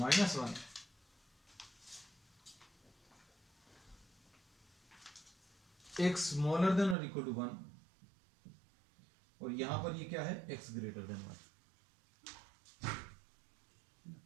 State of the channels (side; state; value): left; drops out; at 7.0 s